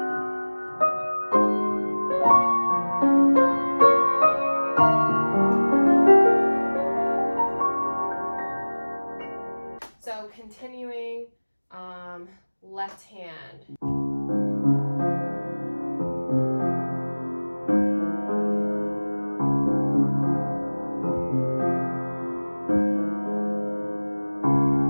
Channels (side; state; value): both; inverted; correlation -1.00